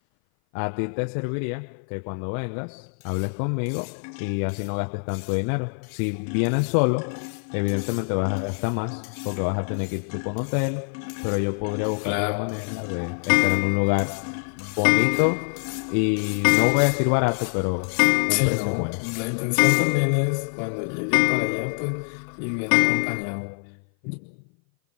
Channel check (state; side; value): silent; right; 57 dB below the other